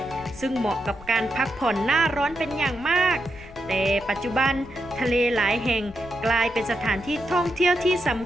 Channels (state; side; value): noise; left; rumble, 19 dB below the sound